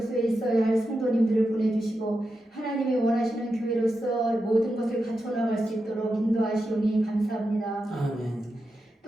있어야 할 성도님들을 보내주시고 하나님이 원하시는 교회로서 모든 것을 갖춰나갈 수 있도록 인도하시오니 감사합니다. 아멘.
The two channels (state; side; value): normal; both; correlation 0.88